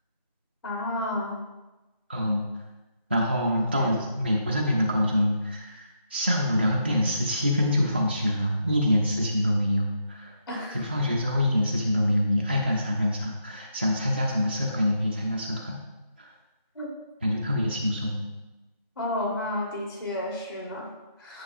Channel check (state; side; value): inverted; both; correlation -0.79